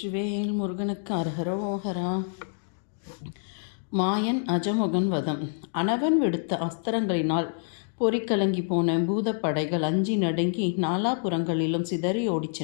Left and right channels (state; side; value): silent; right; digital silence